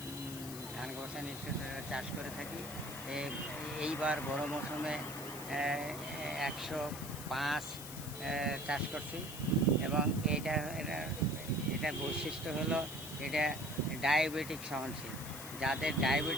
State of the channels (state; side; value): noise; left; hiss, 10 dB below the sound